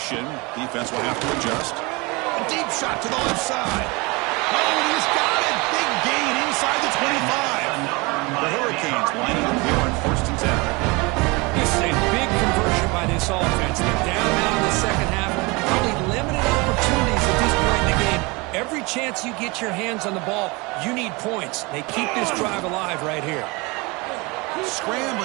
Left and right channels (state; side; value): quieter; left; 26.1 dB